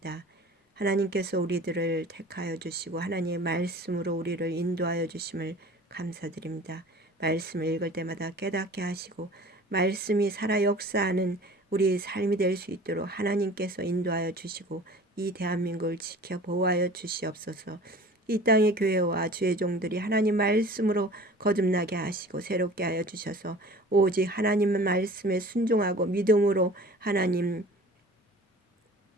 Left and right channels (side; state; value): both; normal; correlation 0.43